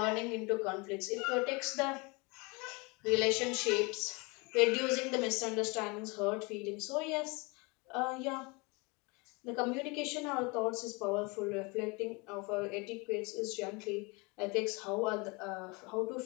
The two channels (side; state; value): right; quieter; 28.1 dB